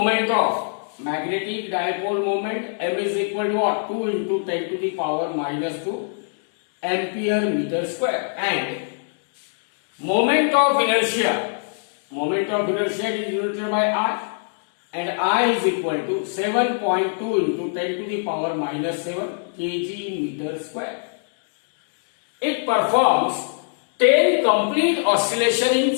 of magnetic dipole moment m is equal to what? 2 into 10 to the power minus 2 ampere meter square, and moment of inertia is denoted by I, and I is equal to 7.2 into 10 to the power minus 7 kg meter square. It performs 10 complete oscillation in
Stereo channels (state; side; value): silent; right; digital silence